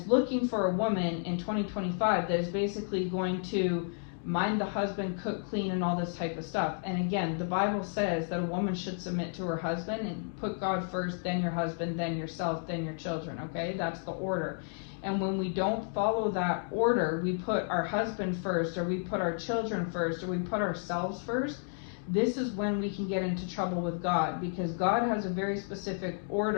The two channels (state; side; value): silent; right; 57 dB below the other